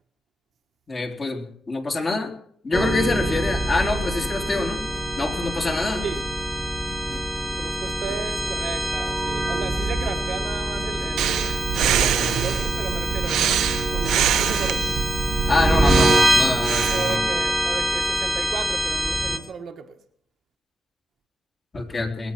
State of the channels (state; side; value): normal; both; correlation 0.84